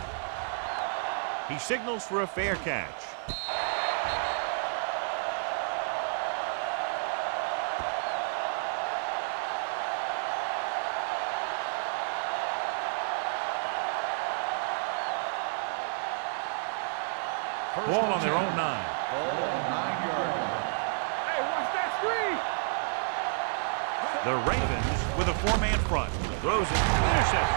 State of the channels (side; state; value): left; silent; 58 dB below the other